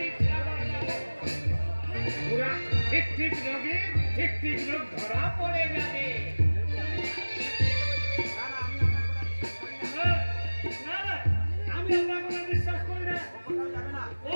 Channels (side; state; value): both; inverted; correlation -1.00